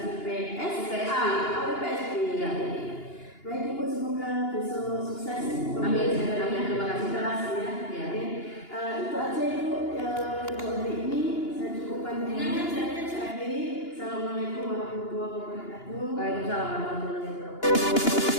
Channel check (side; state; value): right; late; 2.9 ms